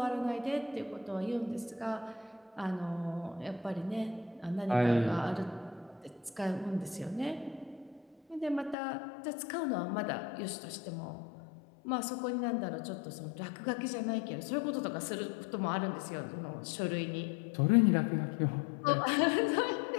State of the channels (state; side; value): drops out; right; at 8.8 s